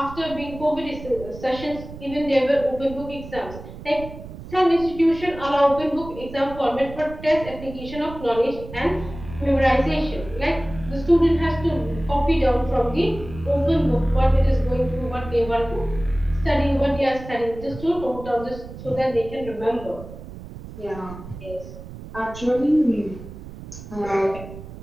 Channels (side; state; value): right; noise; rumble, 13 dB below the sound